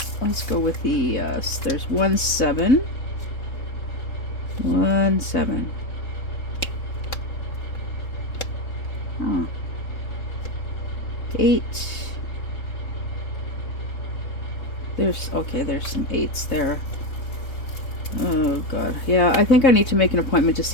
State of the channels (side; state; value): right; late; 3.7 ms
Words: Let's go with the, there's 1 7. 1 7. Oh. 8. There's, okay, there's some 8s there. Oh, God. Yeah, I think I need to make an appointment to